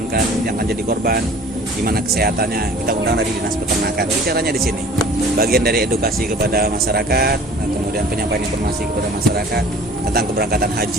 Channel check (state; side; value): normal; both; correlation 0.47